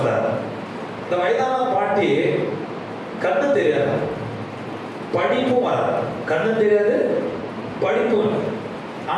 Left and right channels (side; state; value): both; identical; correlation 1.00